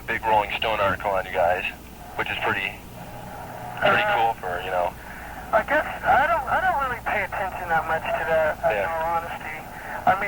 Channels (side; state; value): both; identical; correlation 1.00